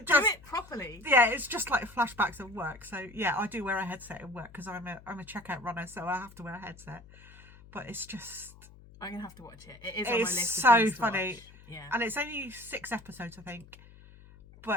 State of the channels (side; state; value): left; noise; hum, 21 dB below the sound